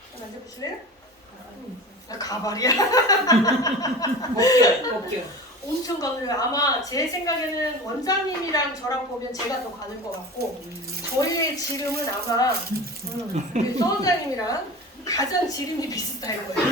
만져보실래요? 가발이야. 먹게요. 엄청 가느요. 아마 제 생각에는 원장님이랑 저랑 보면 제가 더 가는 것 같고, 저희의 지름은 아마 우리 서원장님이랑 가장 지름이 비슷할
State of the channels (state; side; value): normal; both; correlation 0.33